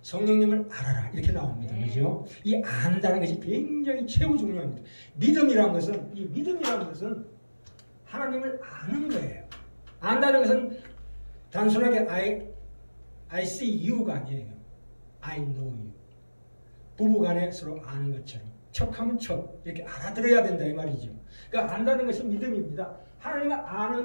성령님을 알아라 이렇게 나옵니다. 그죠? 이 안다는 것이 굉장히 최고 중요합니다. 믿음이라는 것은 하나님을 아는 거예요. 안다는 것은 단순하게 I see you가 아니에요. I know you. 부부간에 서로 아는 것처럼 척하면 척 이렇게 알아들어야 된다 이 말이죠. 그러니까 안다는 것이 믿음입니다. 하나님을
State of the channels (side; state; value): both; inverted; correlation -1.00